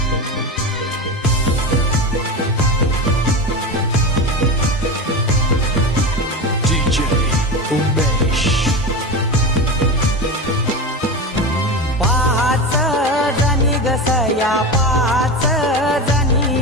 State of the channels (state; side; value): normal; both; correlation 0.23